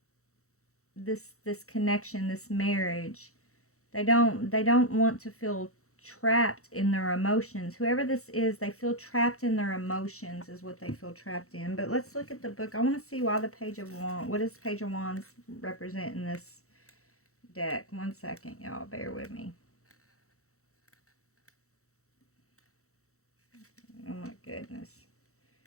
this connection, this marriage. They don't want to feel trapped in their emotions. Whoever this is, they feel trapped in their emotions is what they feel trapped in. But let's look at the book. I want to see why the Page of Wands, what does Page of Wands represent in this deck? 1 second, y'all, bear with me. Oh my goodness.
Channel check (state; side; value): late; right; 0.64 ms